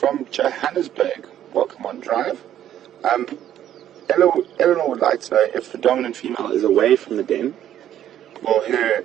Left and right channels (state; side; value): quieter; left; 11.2 dB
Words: Johannesburg. Welcome on drive. Eleanor would like to know if the dominant female is away from the den, will her